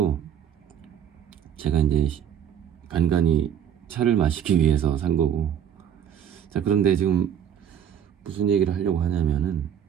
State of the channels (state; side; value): quieter; left; 9.0 dB